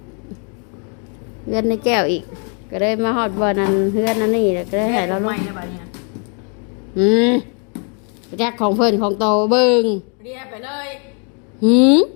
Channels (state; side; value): quieter; right; 38.4 dB